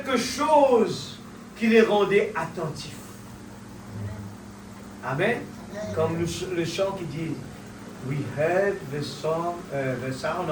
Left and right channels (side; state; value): both; identical; correlation 1.00